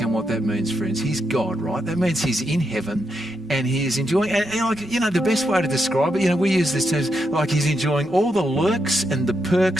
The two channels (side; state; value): both; normal; correlation 0.83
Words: what that means, friends. He's God, right? That means he's in heaven and he is enjoying, and the best way to describe it, we use this term, like he's enjoying all the lurks and the